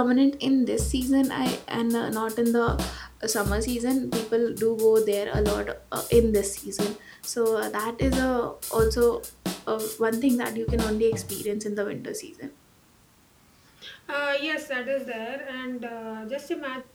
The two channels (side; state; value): both; identical; correlation 1.00